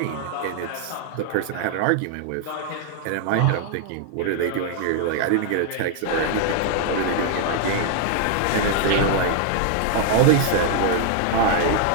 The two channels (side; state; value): both; different; correlation 0.00